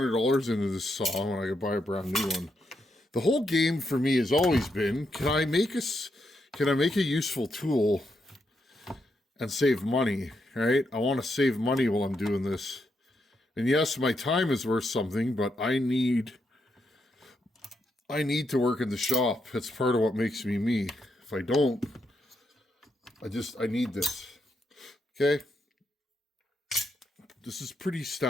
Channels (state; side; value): normal; both; correlation 0.81